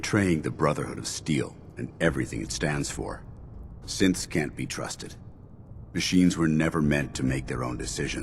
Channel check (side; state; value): both; identical; correlation 1.00